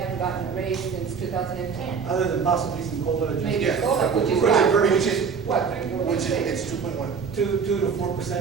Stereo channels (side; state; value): left; quieter; 6.0 dB